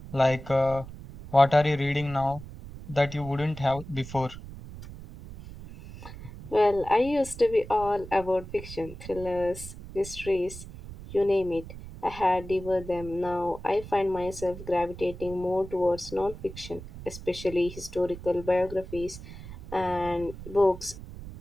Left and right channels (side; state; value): right; noise; rumble, 13 dB below the sound